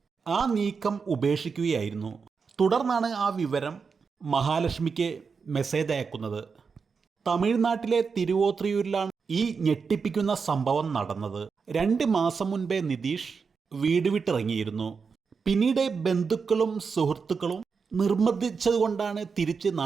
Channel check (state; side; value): quieter; left; 5.4 dB